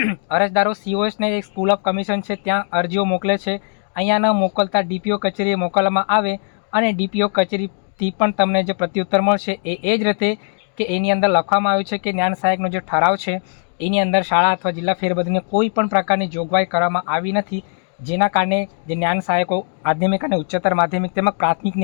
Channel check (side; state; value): right; silent; 58 dB below the other